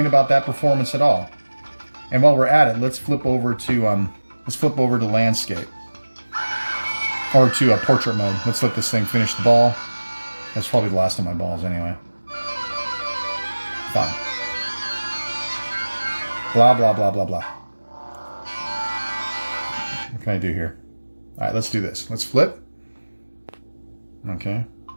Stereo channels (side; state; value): both; inverted; correlation -1.00